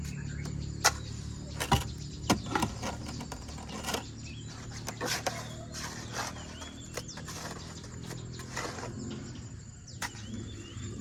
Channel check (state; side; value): identical; both; correlation 1.00